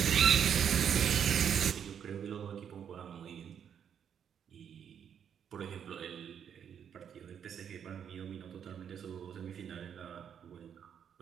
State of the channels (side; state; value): left; quieter; 8.3 dB